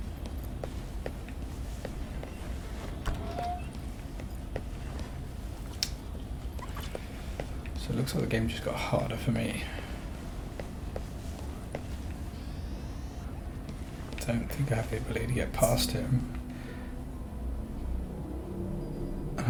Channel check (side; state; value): both; identical; correlation 1.00